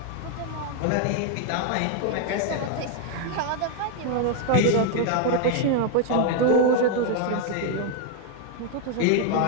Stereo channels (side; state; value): both; different; correlation 0.00